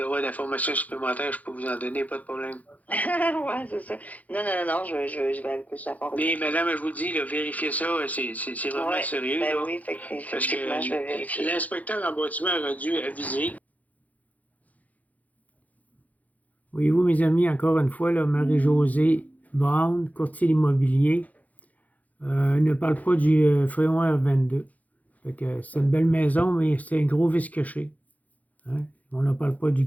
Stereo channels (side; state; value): right; late; 0.076 ms